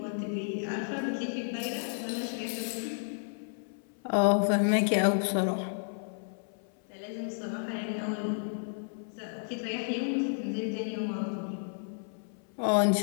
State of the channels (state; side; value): silent; right; 56 dB below the other